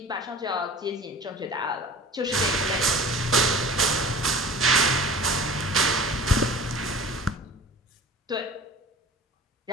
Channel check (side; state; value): both; normal; correlation 0.41